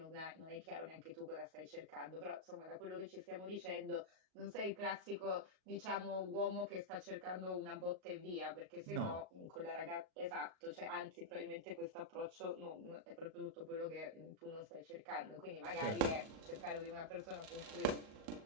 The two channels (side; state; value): left; late; 38 ms